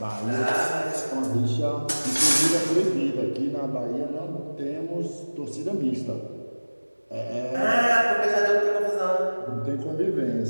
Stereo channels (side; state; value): both; inverted; correlation -1.00